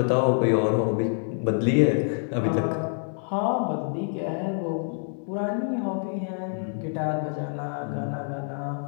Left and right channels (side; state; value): right; silent; 58 dB below the other